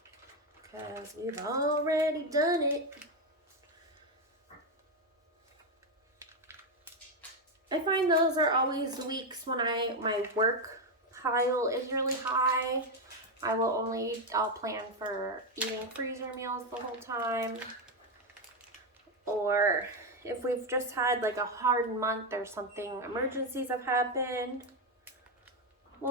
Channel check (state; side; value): normal; both; correlation 0.07